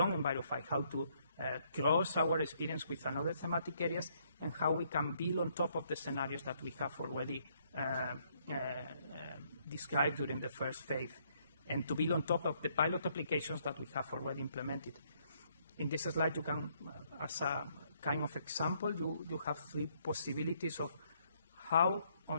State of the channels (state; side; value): inverted; both; correlation -0.69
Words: ENVIROFI, how to cross our experience with another thematic areas, and how we can build on top of the scenarios that we have already described during the first phase, and to build on top of the pilot applications that we have already implemented. In this slide, you can, as a kind of example, you have 3 possibilities of how,